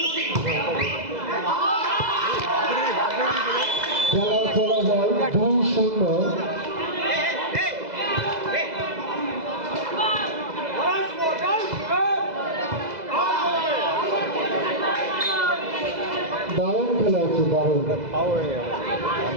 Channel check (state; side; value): late; left; 2.0 ms